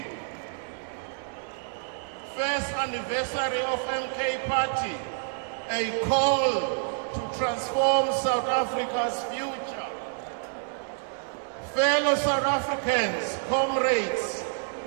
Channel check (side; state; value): left; silent; 59 dB below the other